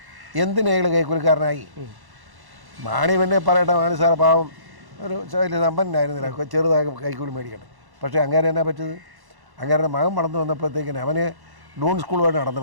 എന്തിനാ അയാൾ കൈക്കൂലിക്കാരനായി? മാണി പിന്നെ പറയട്ടെ, മാണി സാറ് പാവം ഒരു വലിയ സമ്പന്നനായിരുന്നില്ല, ചെറുതായി കൈക്കൂലി മേടിക്കട്ടെ. പക്ഷേ അങ്ങനെ എന്നാ പറ്റത്? അങ്ങനെ മകൻ വളർന്നു വന്നപ്പോഴത്തേക്കിന് അവന് ഡൂൺ സ്കൂളുമായിട്ട്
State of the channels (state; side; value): late; left; 1.1 ms